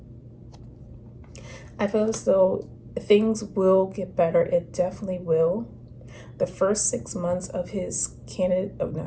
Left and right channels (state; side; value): identical; both; correlation 1.00